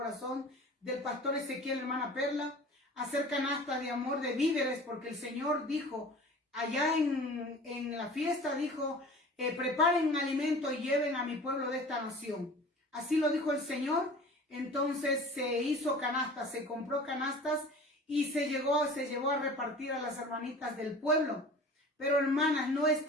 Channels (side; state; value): both; normal; correlation 0.41